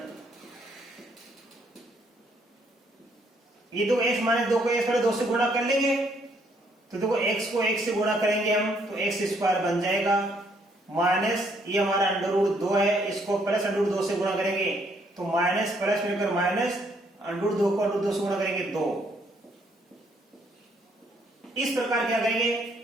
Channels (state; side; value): normal; both; correlation 0.69